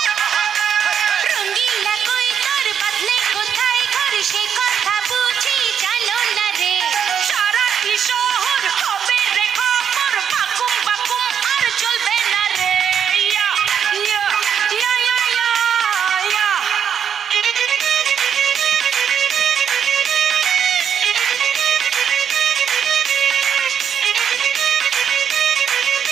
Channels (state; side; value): quieter; left; 8.0 dB